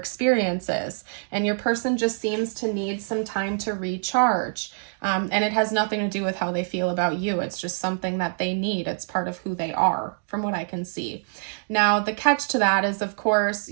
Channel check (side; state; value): left; silent; 58 dB below the other